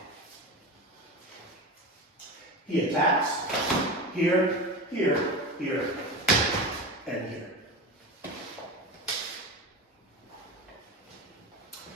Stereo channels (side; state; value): both; normal; correlation 0.26